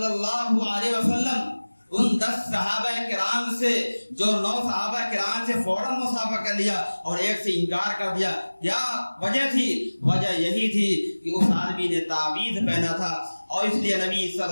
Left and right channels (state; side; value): inverted; both; correlation -1.00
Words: اللہ علیہ وسلم ان 10 صحابہ کرام سے جو 9 صحابہ کرام سے فوراً مصافحہ کر لیا اور ایک سے انکار کر دیا، کیا وجہ تھی؟ وجہ یہی تھی کہ اس آدمی نے تعویذ پہنا تھا اور اس لیے نبی صلی